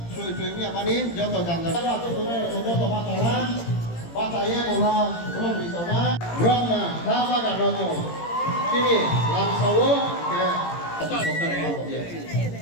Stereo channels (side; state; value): right; late; 18 ms